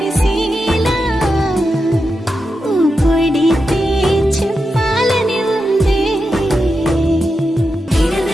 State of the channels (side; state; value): both; normal; correlation 0.88